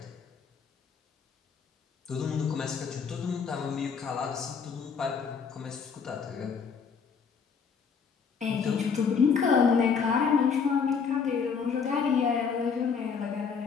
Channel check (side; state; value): right; quieter; 6.0 dB